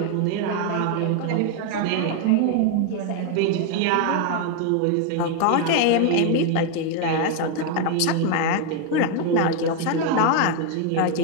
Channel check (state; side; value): different; both; correlation 0.01